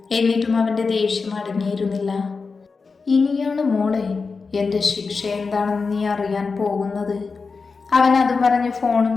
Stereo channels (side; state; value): right; quieter; 4.6 dB